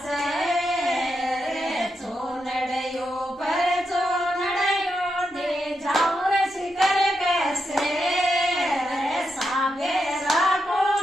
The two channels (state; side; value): normal; both; correlation 0.85